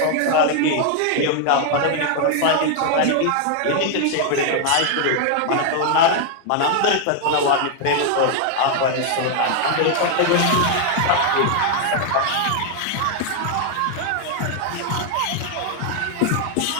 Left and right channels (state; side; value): different; both; correlation 0.00